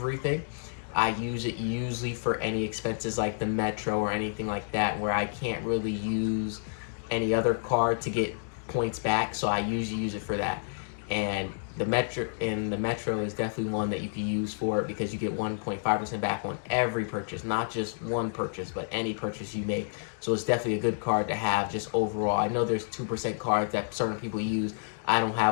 I use it usually for any expenses like the Metro or anything like that, where I can't really use any other card to get points back, so I usually use it for that. And the Metro is definitely one that you can use for it, because you get 1.5% back on every purchase, not just one purchase, but any purchase you make. So it's definitely a good card to have just overall. I know there's 2% cards that certain people use. I don't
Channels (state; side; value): silent; right; digital silence